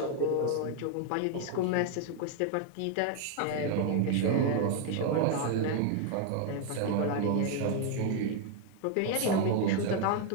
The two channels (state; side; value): different; both; correlation 0.00